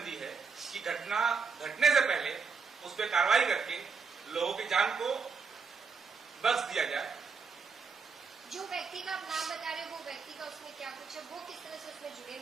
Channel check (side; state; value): left; quieter; 5.3 dB